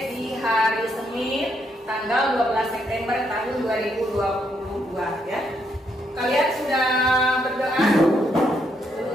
di hari Senin tanggal 12 September tahun 2022 ya. Kalian sudah berdoa?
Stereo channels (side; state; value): both; normal; correlation 0.76